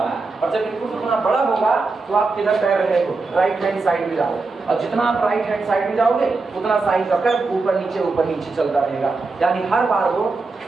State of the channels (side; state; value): left; quieter; 3.8 dB